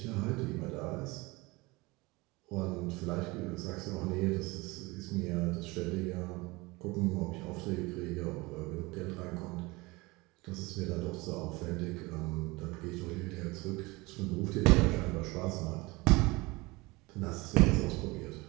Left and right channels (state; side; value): quieter; left; 23.4 dB